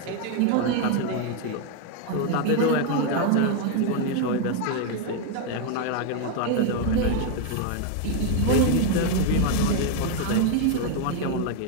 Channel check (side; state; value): both; different; correlation 0.01